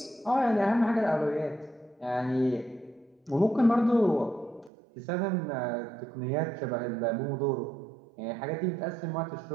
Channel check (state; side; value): drops out; left; at 4.7 s